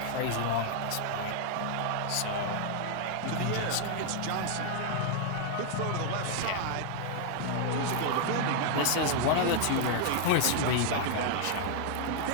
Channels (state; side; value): different; both; correlation 0.00